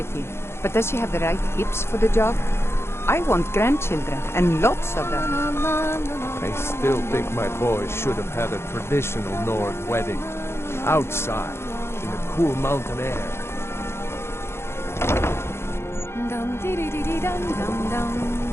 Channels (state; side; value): late; right; 0.12 ms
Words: but does she have the right hips for the job? I want grandchildren, and lots of them. I still think my boy should have had a traditional Nord wedding. Outside, in the cool mountain air.